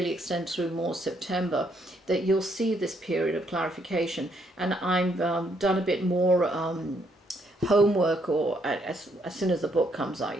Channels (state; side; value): normal; both; correlation 0.72